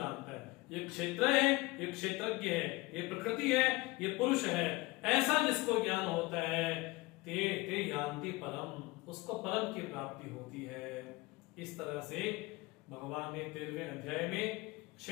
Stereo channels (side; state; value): right; quieter; 22.5 dB